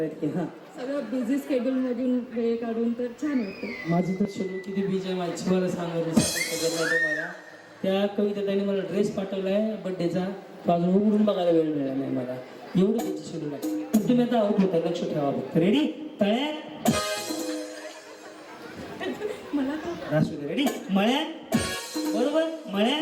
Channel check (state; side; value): identical; both; correlation 1.00